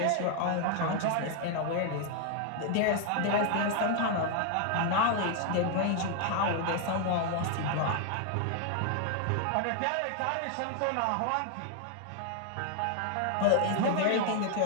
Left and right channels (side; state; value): both; different; correlation 0.00